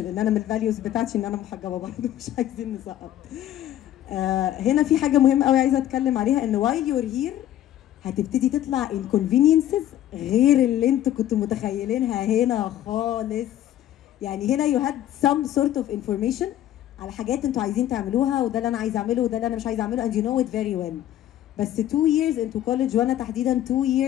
ان انا من الفاليوز بتاعتي ان انا محجبه برضه، مش عايزين نسقط. هنا في حاجه مهمه قوي عايزه اتكلم عليها، ان while you're here هتبتدي تطلع inconveniences غير اللي انتوا كنتوا متخيلينها هنا خالص. يعني هنا you had some sort of information على حاجات انتوا عايزين تعملوها، وده اللي انا عايز اعمله وده اللي انا مش عايز اعمله and you know it very well. بس 2 years into college، وانا تحديدا 2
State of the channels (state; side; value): quieter; right; 12.3 dB